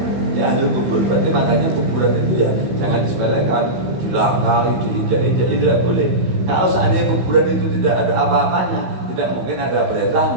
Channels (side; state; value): left; late; 16 ms